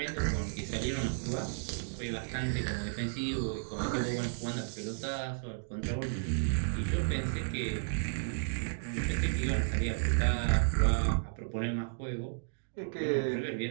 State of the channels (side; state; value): left; silent; digital silence